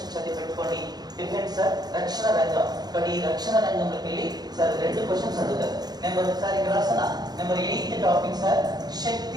చదివి పెట్టుకోండి. డిఫెన్స్ సార్ రక్షణ రంగం. బట్ ఈ రక్షణ రంగంలోకి వెళ్ళి సార్ 2 క్వశ్చన్స్ అడుగుతారు. సార్ ఇక్కడ రాసిన నెంబర్ 8th టాపిక్ సార్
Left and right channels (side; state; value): left; late; 0.19 ms